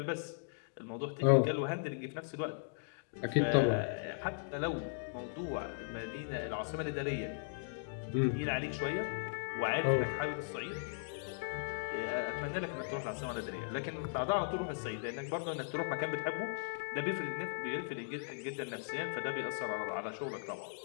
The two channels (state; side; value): silent; right; digital silence